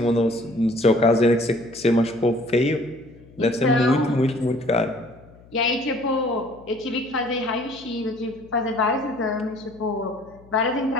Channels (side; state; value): left; noise; hum, 24 dB below the sound